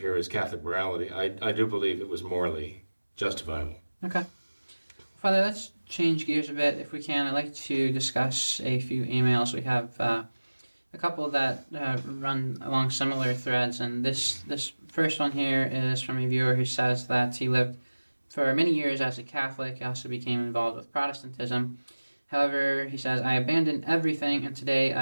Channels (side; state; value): both; inverted; correlation -1.00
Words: is Catholic morality. I do believe it was morally justifiable. Okay. Father, let's change gears a bit if we can. I'd like to discuss a few emails. We have a couple that run along similar threads, and this first one here is from a viewer who says that he lived for many years as a Catholic. He also became involved with Protestantism. However, he says, I abandoned everything, and today